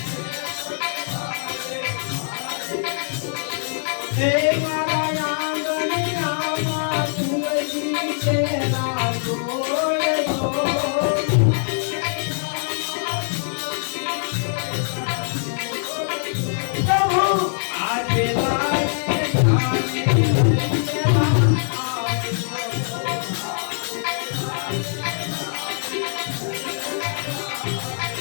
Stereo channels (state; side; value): silent; right; digital silence